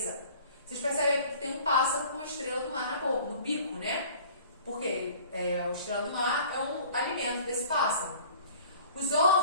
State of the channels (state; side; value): inverted; both; correlation -0.49